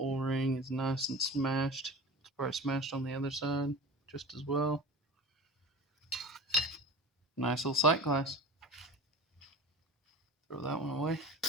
is nice and smashed. It's probably smashed on the other side just as well. Nice little sight glass. Throw that one away.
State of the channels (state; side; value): normal; both; correlation 0.35